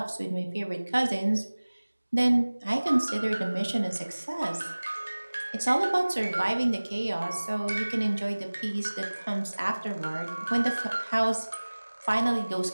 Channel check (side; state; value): both; inverted; correlation -1.00